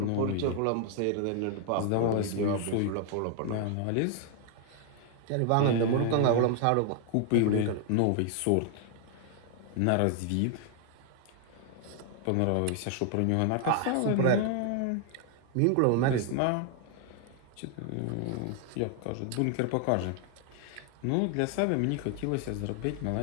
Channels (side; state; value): both; different; correlation 0.00